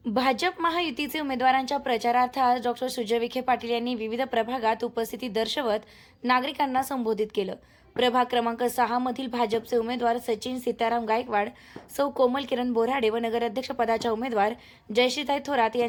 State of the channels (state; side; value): identical; both; correlation 1.00